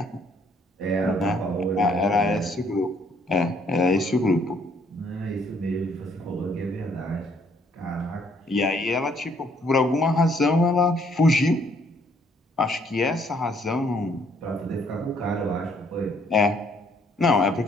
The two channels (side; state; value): both; normal; correlation 0.66